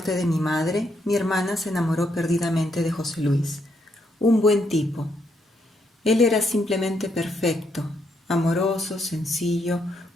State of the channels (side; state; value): both; normal; correlation 0.76